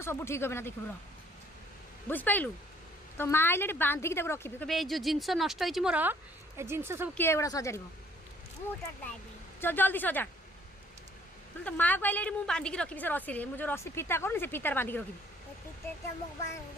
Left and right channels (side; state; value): both; normal; correlation 0.60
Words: सब ठीक हे ना देख बुझिपारू तो माँ आइले बांधिकी रखी कहे जो जिनस नष्ट हो मोर ए जिनस सब किए गुड़ा सजाड़ जल्दी सजा तो माँ को आइले मुझे बांधिकी रखी से रसी मुझे रसी फिता कर से फितार बांधिकी रखी